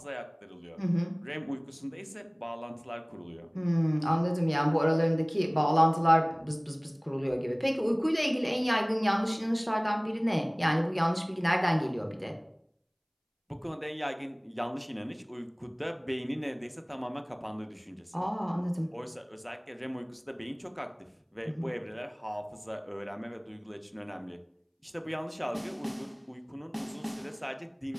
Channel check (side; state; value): both; identical; correlation 1.00